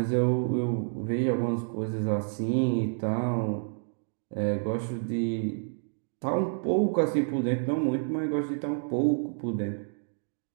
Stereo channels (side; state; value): left; silent; 59 dB below the other